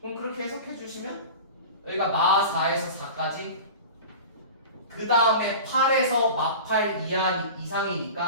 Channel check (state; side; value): inverted; both; correlation -0.34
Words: 그럼 그렇게 해석해 주시면 여기가 마 4에서 4까지 그 다음에 8에서 마 8